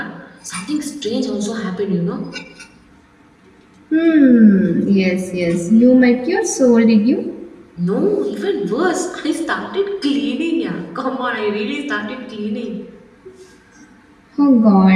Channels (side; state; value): both; identical; correlation 1.00